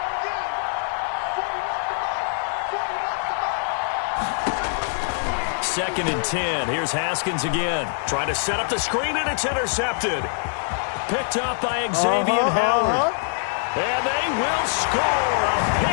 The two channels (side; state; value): right; silent; digital silence